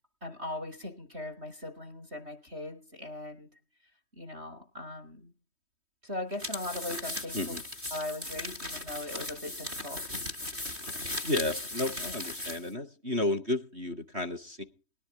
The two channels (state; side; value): late; left; 3.2 ms